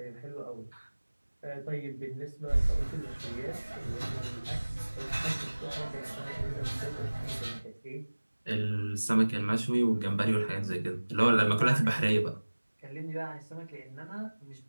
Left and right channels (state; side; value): inverted; both; correlation -1.00